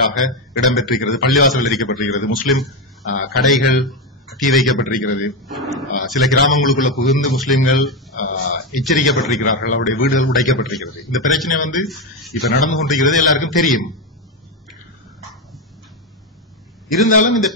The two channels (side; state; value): both; normal; correlation 0.10